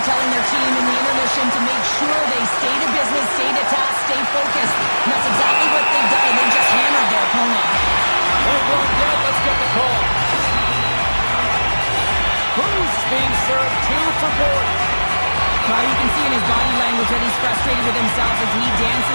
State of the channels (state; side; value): inverted; both; correlation -1.00